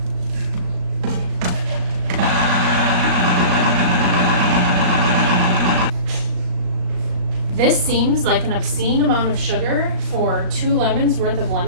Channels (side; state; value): left; late; 38 ms